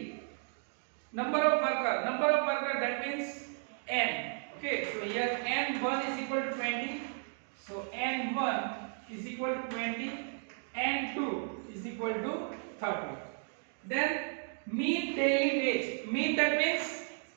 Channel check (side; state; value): left; silent; 55 dB below the other